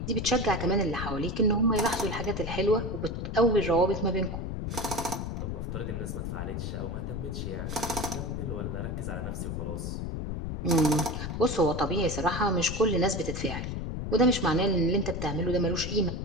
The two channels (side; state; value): left; noise; rumble, 4 dB below the sound